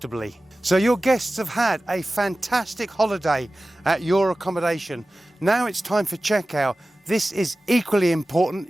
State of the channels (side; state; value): both; normal; correlation 0.96